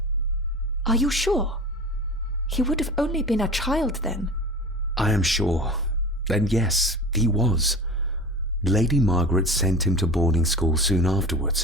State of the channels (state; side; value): normal; both; correlation 0.34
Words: Are you sure? He would have only been a child then. I am sure. Then yes, he was. Lady Margaret sent him to boarding school soon